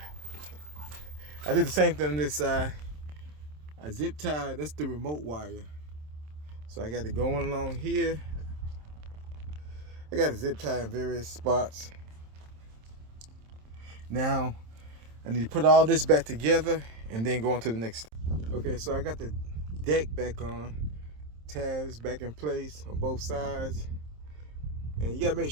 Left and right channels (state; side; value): late; left; 27 ms